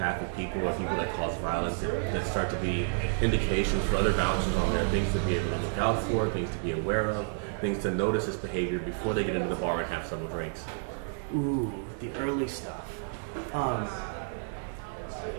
people or people that cause violence that start to be indications for other bouncers on there, things to be able to look out for, things to be aware of, things to notice this behavior before they get into the bar and have several drinks? Ooh, the early stuff.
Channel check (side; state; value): left; silent; digital silence